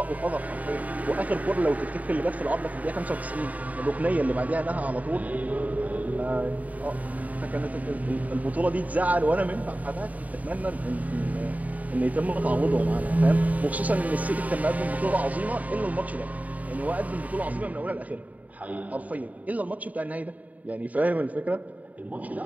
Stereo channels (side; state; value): left; late; 0.073 ms